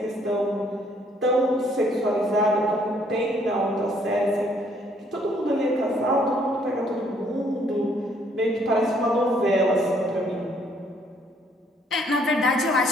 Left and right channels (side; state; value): both; normal; correlation 0.65